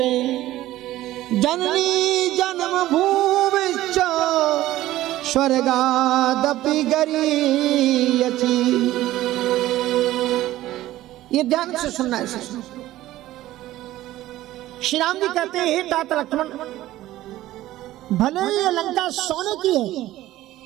जननी जन्म भूमिश्च स्वर्गादपि गरीयसी। ये ध्यान से सुनना है। श्री राम जी कहते हैं, हे तात लक्ष्मण, भले ही ये लंका सोने की है,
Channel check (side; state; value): left; quieter; 15.3 dB